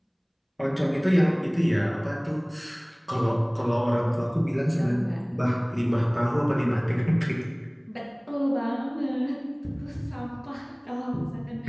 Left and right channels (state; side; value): identical; both; correlation 1.00